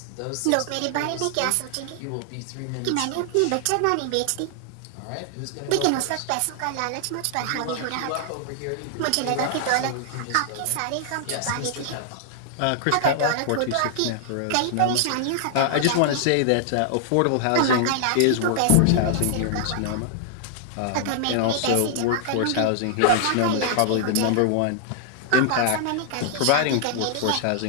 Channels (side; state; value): both; different; correlation -0.01